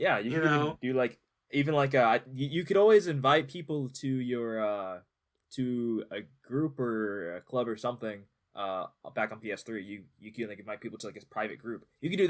you can even do, like, even like you could always invite people to your to a group or a club or something back on PS3. You can, like, invite people to, like, a private group. You can do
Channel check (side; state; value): both; identical; correlation 1.00